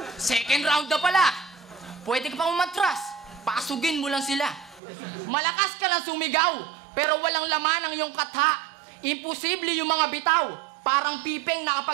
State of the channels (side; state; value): left; drops out; at 4.8 s